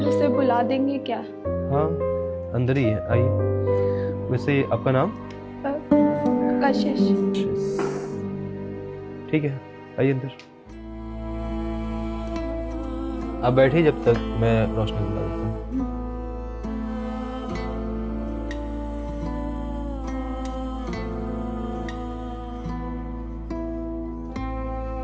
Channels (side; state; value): both; identical; correlation 1.00